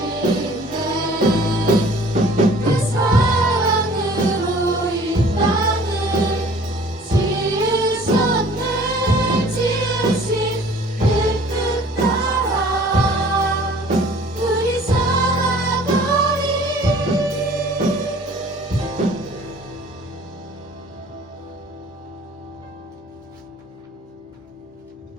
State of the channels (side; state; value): both; normal; correlation 0.51